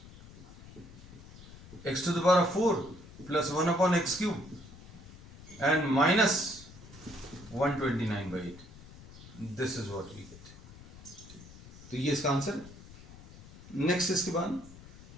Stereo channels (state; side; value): noise; left; rumble, 18 dB below the sound